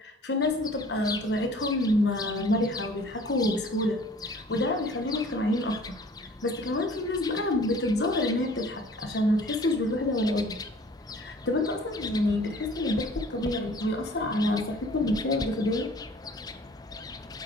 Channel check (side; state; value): both; normal; correlation 0.50